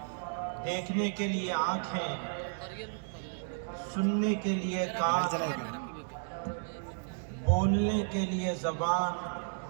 دیکھنے کے لیے آنکھیں، سننے کے لیے کان، بولنے کے لیے زبان،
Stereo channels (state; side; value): silent; left; digital silence